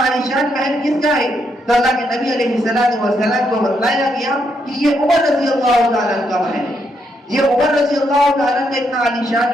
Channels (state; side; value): normal; both; correlation 0.77